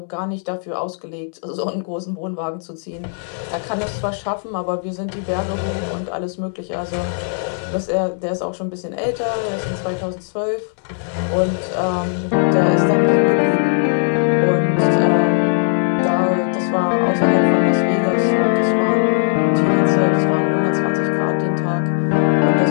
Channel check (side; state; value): right; silent; 67 dB below the other